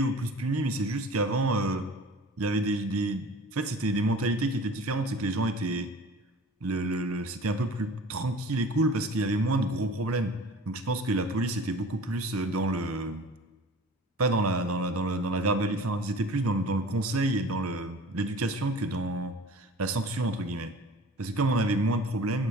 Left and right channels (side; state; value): both; normal; correlation 0.42